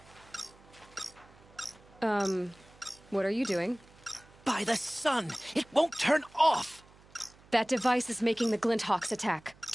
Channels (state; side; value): noise; right; hum, 26 dB below the sound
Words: What are you doing? By the sun, it won't turn off! That device is making the Glinthawks attack.